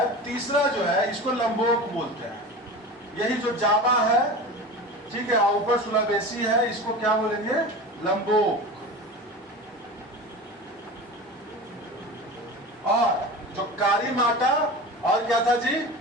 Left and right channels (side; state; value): both; normal; correlation 0.32